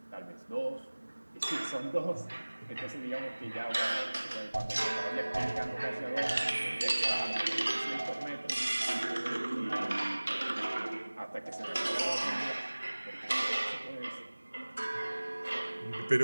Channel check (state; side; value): inverted; both; correlation -1.00